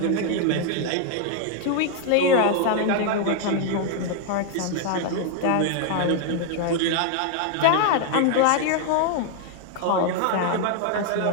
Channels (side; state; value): both; different; correlation 0.00